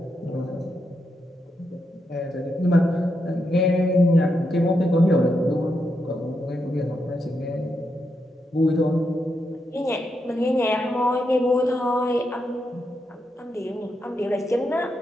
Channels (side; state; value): both; normal; correlation 0.83